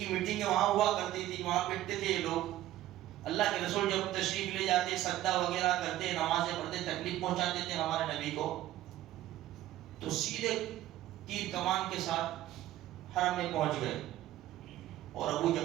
میٹنگیں وہاں ہوا کرتی تھی, وہاں بیٹھتے تھے یہ لوگ. اللہ کے رسول جب تشریف لے جاتے, سجدہ وغیرہ کرتے, نمازیں پڑھتے, تکلیف پہنچاتے تھے ہمارے نبی کو, تو سیدھے تیر کمان کے ساتھ حرم میں پہنچ گئے. اور ابو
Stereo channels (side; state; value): left; quieter; 14.2 dB